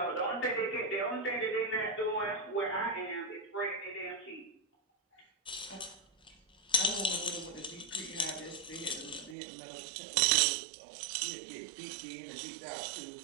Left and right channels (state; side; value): drops out; left; at 9.3 s